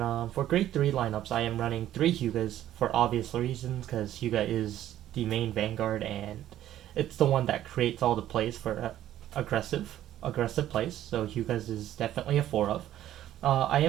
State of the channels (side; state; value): left; quieter; 12.5 dB